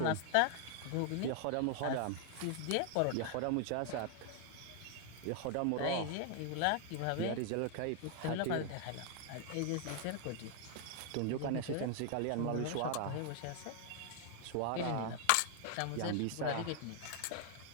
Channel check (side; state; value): both; different; correlation 0.00